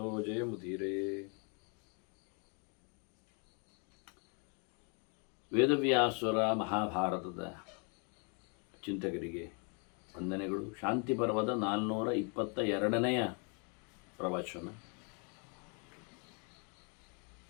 जयमुदीरे। ವೇದವ್ಯಾಸರ ಮಹಾಭಾರತದ ಚಿಂತಕರಿಗೆ ವಂದನೆಗಳು. ಶಾಂತಿ ಪರ್ವದ 422ನೆಯ ಪ್ರವಚನ.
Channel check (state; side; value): quieter; right; 37.0 dB